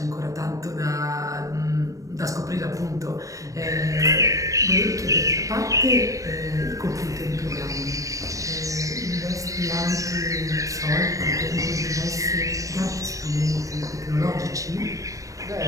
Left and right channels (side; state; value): left; late; 0.16 ms